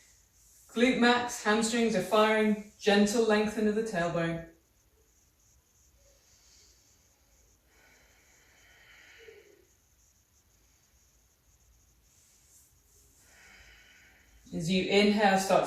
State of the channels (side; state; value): both; identical; correlation 1.00